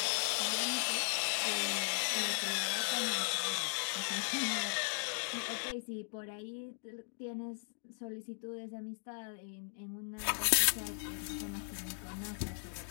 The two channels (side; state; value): right; silent; digital silence